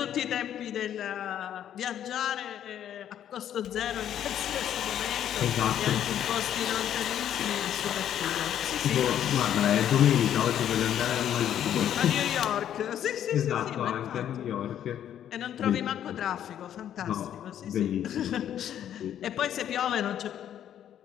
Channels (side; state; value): right; quieter; 10.4 dB